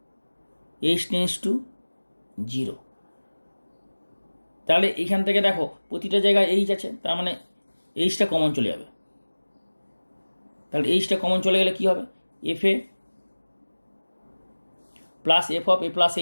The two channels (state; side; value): inverted; both; correlation -1.00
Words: h টেন্স টু 0। তাহলে এইখান থেকে দেখো প্রতিটা জায়গায় এইচ আছে, তার মানে এইচটা কমন চলে যাবে। তাহলে এইচটা কমন চলে গেলে কি হবে, F a plus F of a plus